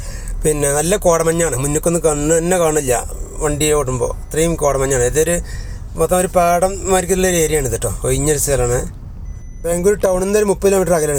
പിന്നെ നല്ല കോടമഞ്ഞാണ്, മുന്നിക്കൊന്നും കണ്ണ് തന്നെ കാണില്ല വണ്ടി ഓടുമ്പോൾ, ഇത്രയും കോടമഞ്ഞാണ്. ഇതൊരു മൊത്തം ഒരു പാടം മാതിരിക്കുള്ള ഒരു ഏരിയ ആണ് ഇത് കേട്ടോ, ഒഴിഞ്ഞൊരു സ്ഥലമാണ്. ബാംഗ്ലൂർ ടൗണിൽ നിന്ന് ഒരു 30 കിലോമീറ്റർ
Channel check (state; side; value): identical; both; correlation 1.00